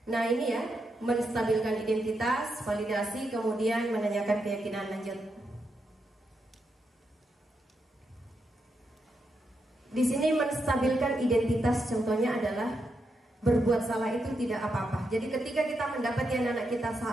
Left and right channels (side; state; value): both; normal; correlation 0.83